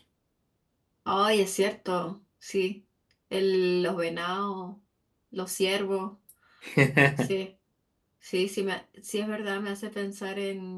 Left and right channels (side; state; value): both; identical; correlation 1.00